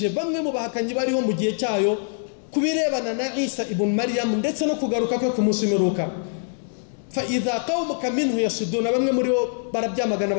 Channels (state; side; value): silent; right; digital silence